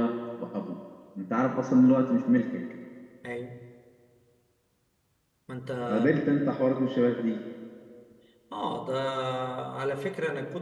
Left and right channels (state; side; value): identical; both; correlation 1.00